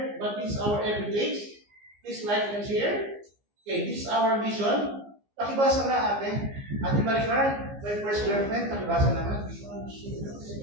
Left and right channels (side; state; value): left; late; 15 ms